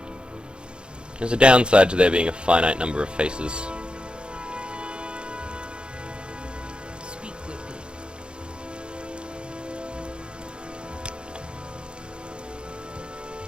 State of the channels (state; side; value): late; left; 0.053 ms